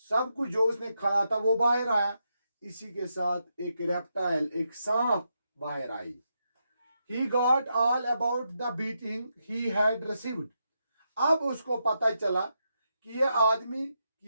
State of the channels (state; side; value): inverted; both; correlation -0.83